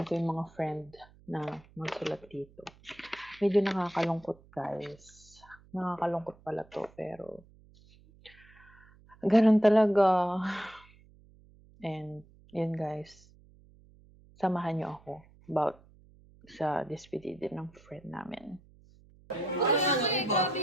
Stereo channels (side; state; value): right; noise; hum, 26 dB below the sound